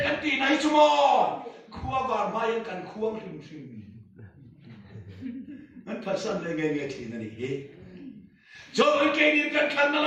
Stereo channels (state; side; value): identical; both; correlation 1.00